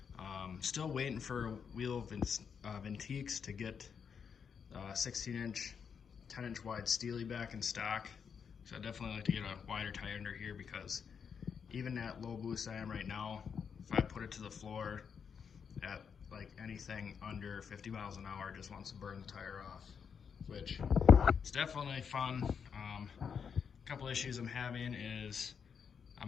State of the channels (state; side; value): quieter; right; 6.7 dB